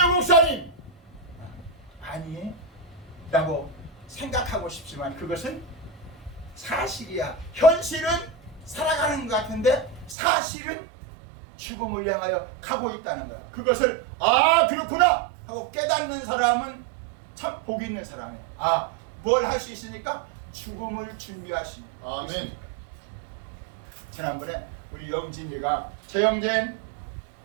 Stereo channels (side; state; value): left; drops out; at 10.2 s